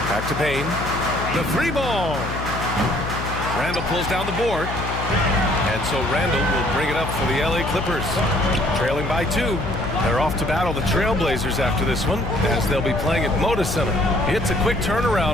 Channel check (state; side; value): noise; left; hum, 6 dB below the sound